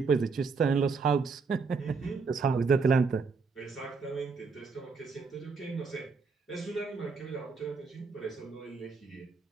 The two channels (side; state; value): left; quieter; 4.8 dB